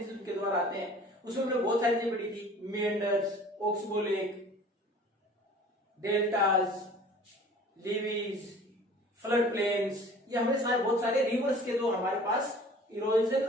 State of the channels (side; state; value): both; normal; correlation 0.47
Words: उनके द्वारा आते हैं. उसमें हमने बहुत सारी चीजें पढ़ी थी. Meanders, oxbow lake, deltas, levees, flood plains, ये हमने सारे बहुत सारे रिवर्स के जो हमारे पास